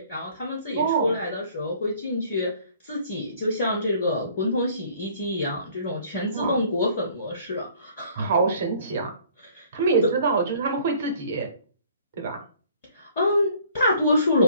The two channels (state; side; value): inverted; both; correlation -0.55